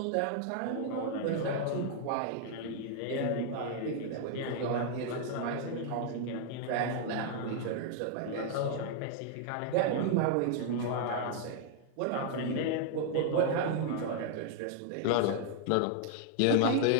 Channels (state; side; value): different; both; correlation 0.00